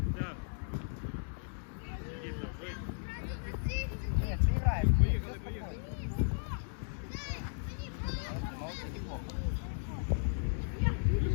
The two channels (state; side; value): silent; right; digital silence